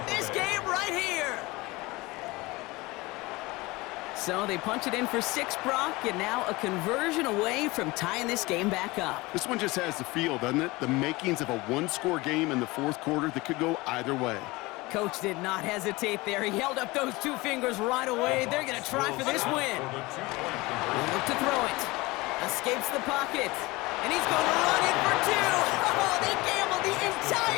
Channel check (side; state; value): right; quieter; 22.1 dB